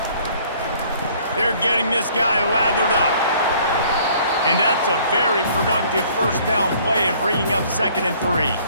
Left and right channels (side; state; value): both; inverted; correlation -0.57